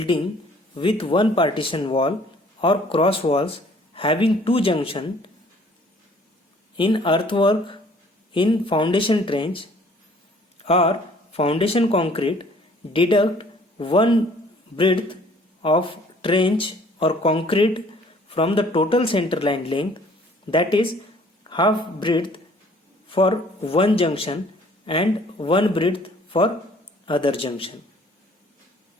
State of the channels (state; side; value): normal; both; correlation 0.56